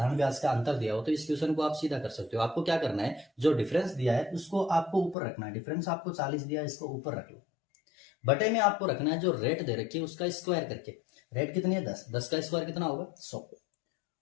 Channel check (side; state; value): right; drops out; at 5.2 s